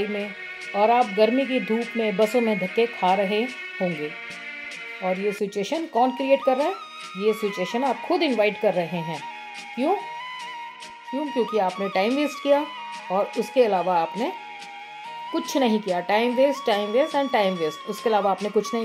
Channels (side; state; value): both; identical; correlation 1.00